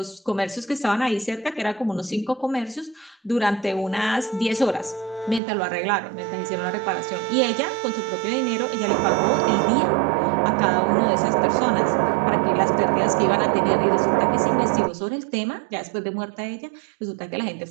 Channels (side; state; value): left; drops out; at 5.4 s